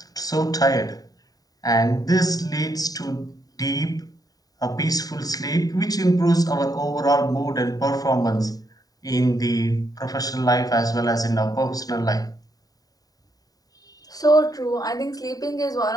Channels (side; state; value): right; late; 0.18 ms